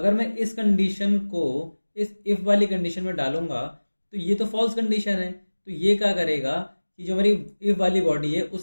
मैं इस कंडीशन को इस इफ वाली कंडीशन में डालूंगा तो ये तो फॉल्स कंडीशन है, तो ये क्या करेगा कि जो हमारी इफ वाली बॉडी है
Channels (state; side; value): inverted; both; correlation -1.00